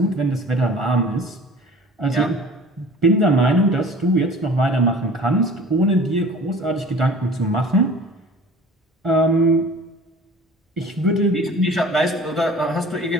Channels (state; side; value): normal; both; correlation 0.44